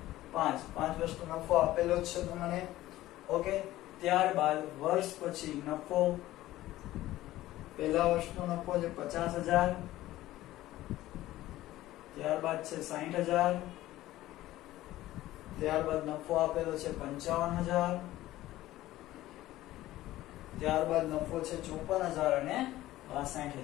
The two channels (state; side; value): quieter; right; 15.7 dB